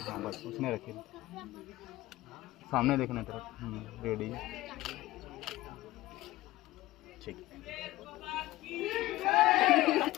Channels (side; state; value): right; quieter; 17.2 dB